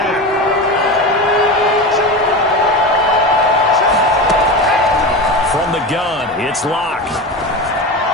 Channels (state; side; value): normal; both; correlation 0.24